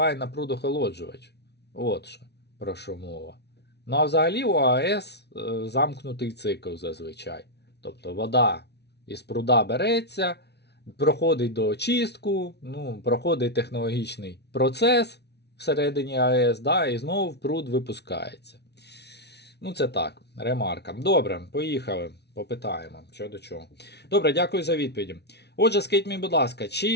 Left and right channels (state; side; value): late; right; 0.49 ms